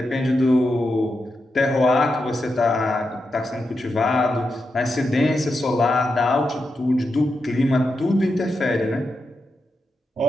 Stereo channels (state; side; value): normal; both; correlation 0.87